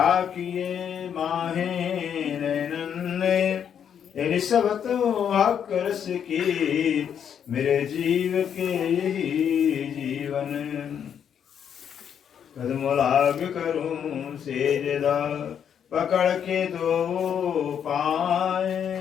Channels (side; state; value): right; quieter; 8.4 dB